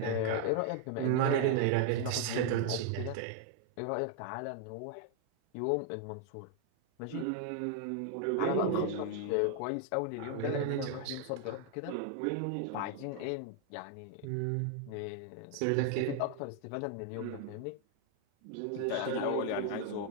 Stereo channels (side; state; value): both; different; correlation 0.00